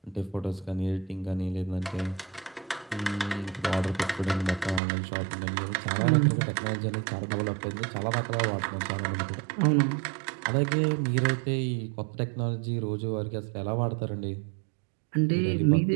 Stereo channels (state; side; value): drops out; left; at 4.8 s